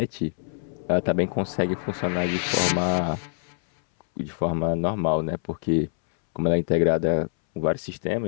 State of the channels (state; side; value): silent; right; 62 dB below the other